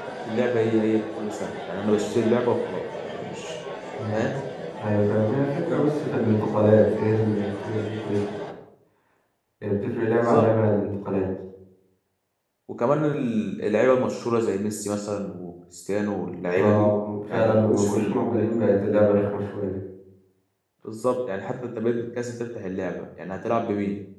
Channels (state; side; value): identical; both; correlation 1.00